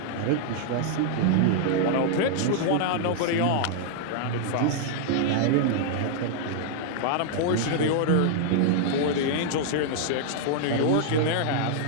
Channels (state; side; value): different; both; correlation -0.01